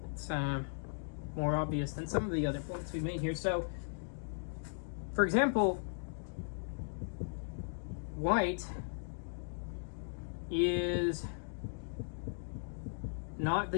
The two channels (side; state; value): right; silent; digital silence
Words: It's more obvious than some of the other points we've made here. So, for example, white is not